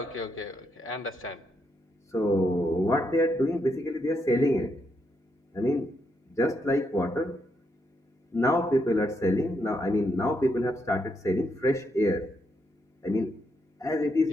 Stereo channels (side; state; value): both; normal; correlation 0.79